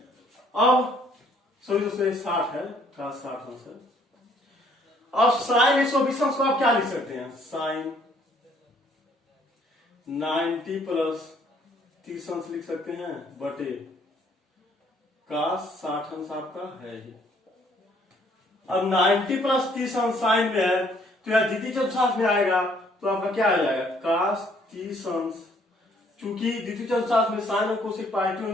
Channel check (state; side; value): normal; both; correlation 0.63